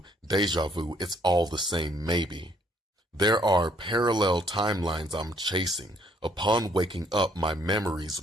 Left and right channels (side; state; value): both; normal; correlation 0.65